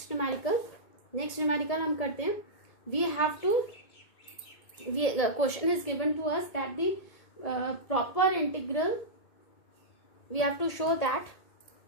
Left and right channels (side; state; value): right; late; 1.8 ms